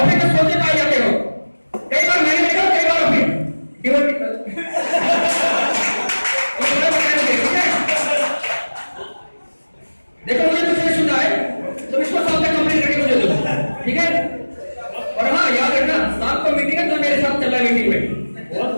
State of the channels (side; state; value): both; inverted; correlation -1.00